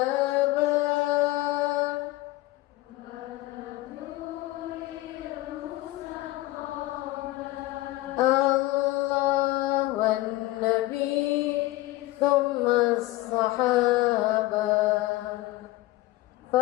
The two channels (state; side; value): quieter; right; 18.0 dB